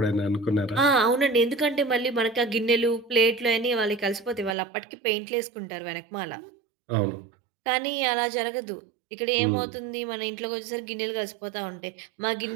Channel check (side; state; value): left; drops out; at 4.5 s